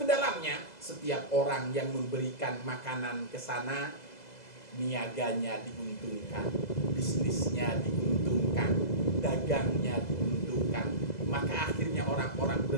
dalamnya. Setiap orang yang memberikan makanan ke sana, niaganya diuntungkan, bisnisnya diuntungkan, dagangnya diuntungkan. Maka akhirnya orang-orang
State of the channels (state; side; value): late; right; 2.0 ms